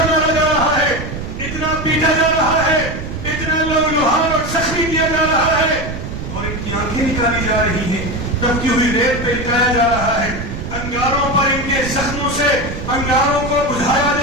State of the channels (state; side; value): noise; right; rumble, 7 dB below the sound